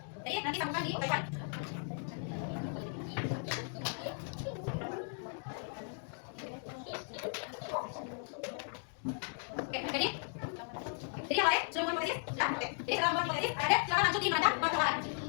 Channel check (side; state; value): right; silent; 53 dB below the other